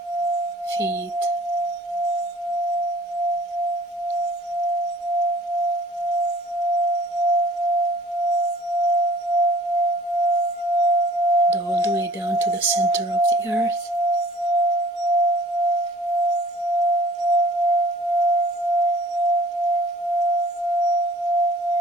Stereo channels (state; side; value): normal; both; correlation 0.52